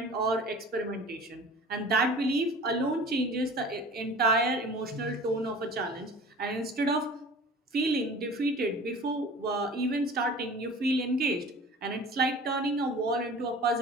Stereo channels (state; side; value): normal; both; correlation 0.42